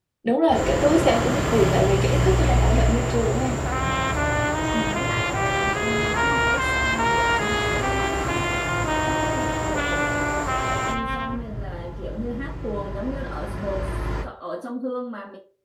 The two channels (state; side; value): identical; both; correlation 1.00